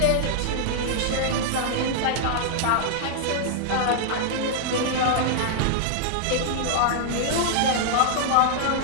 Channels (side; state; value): both; different; correlation -0.01